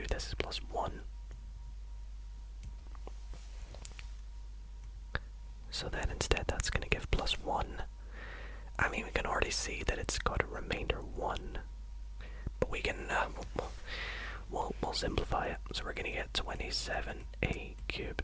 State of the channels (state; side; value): identical; both; correlation 1.00